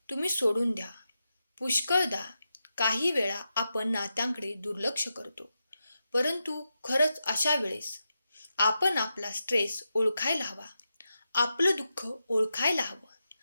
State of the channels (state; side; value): inverted; both; correlation -0.88